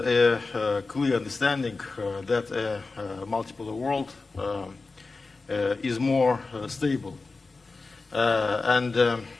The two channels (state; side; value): quieter; right; 3.8 dB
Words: clear understanding that a multipolar world is more stable, and